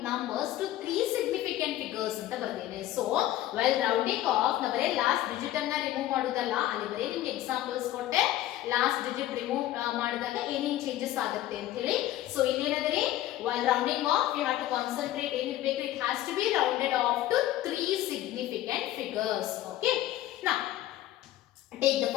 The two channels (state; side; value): quieter; right; 14.2 dB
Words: numbers to 3 significant figures ಅಂತ ಬರ್ದೇನೆ. So well rounding off ನ ಬರೇ last digit ಅನ್ನ ರಿಮೂವ್ ಮಾಡೋದಲ್ಲ, ಅಲ್ಲಿ ಬರೇ ನಿಮ್ಗೆ ಎಕ್ಸಾಂಪಲ್ಸ್ ಕೊಟ್ಟೆ ಲಾಸ್ಟ್ ಡಿಜಿಟ್ ರಿಮೂವ್ ಮಾಡಿದಾಗ ಏನೇನು ಚೇಂಜಸ್ ಆಗುತ್ತೆ ಅಂತ ಹೇಳಿ. ಸೊ ಇಲ್ಲಿ ಏನಂದ್ರೆ while rounding off you have to concentrate ಏನಿರಬೇಕು, it has to be rounded off to 3 significant figures. Okay. Now take the